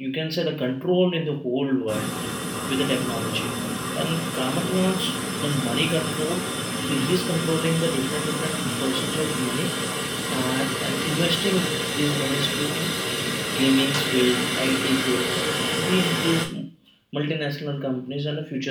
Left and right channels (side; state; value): both; identical; correlation 1.00